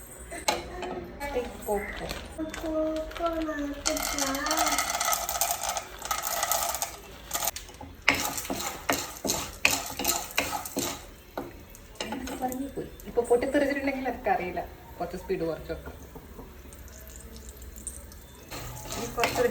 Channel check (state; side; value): identical; both; correlation 1.00